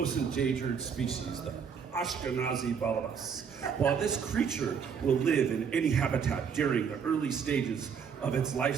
endangered species, the Ashkenazi balabas. While this creature will live in any habitat during the early stages of its life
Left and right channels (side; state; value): left; quieter; 6.8 dB